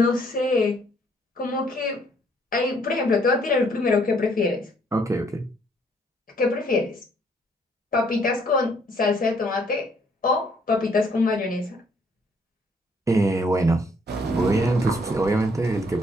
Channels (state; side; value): normal; both; correlation 0.66